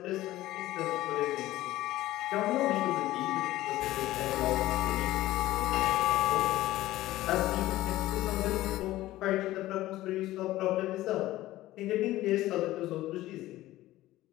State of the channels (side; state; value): right; quieter; 16.1 dB